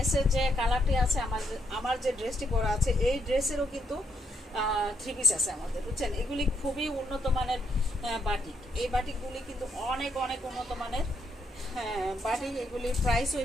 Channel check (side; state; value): both; normal; correlation 0.76